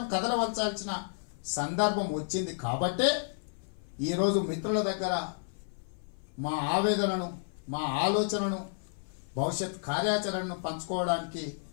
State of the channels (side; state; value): right; silent; 57 dB below the other